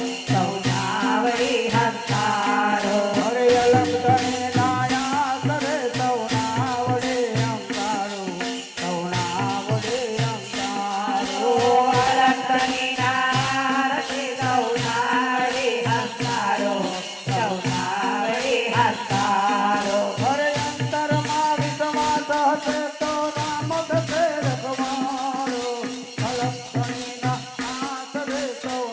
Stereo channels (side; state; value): both; identical; correlation 1.00